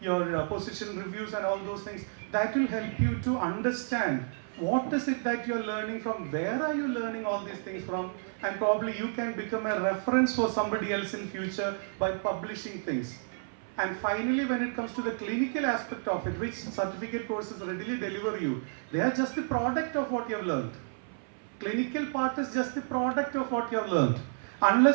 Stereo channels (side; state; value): left; silent; 56 dB below the other